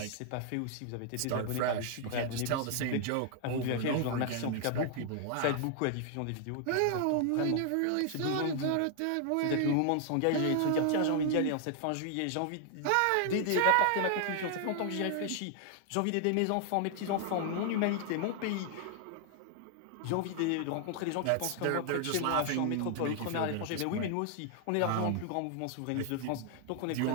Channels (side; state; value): both; different; correlation 0.00